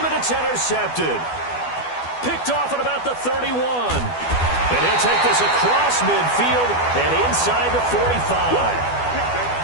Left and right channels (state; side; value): late; right; 12 ms